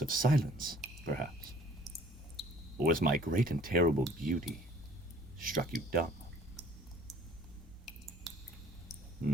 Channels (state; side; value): normal; both; correlation 0.55